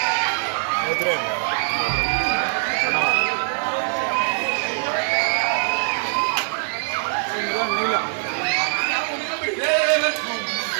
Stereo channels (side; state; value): left; silent; 63 dB below the other